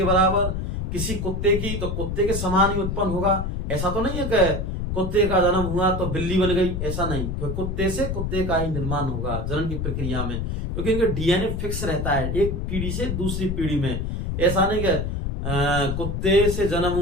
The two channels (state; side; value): noise; left; rumble, 2 dB below the sound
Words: बराबर, किसी कुत्ते की तो कुत्ते के समान ही उत्पन्न होगा। ऐसा तो नहीं है कि कुत्ते का जन्म हुआ तो बिल्ली बन गई, ऐसा नहीं, क्योंकि कुत्ते से कुत्ते का ही निर्माण होगा जनन की प्रक्रिया में, क्योंकि इनका डीएनए फिक्स रहता है एक पीढ़ी से दूसरी पीढ़ी में। ऐसा नहीं कि कुत्ते से जन्म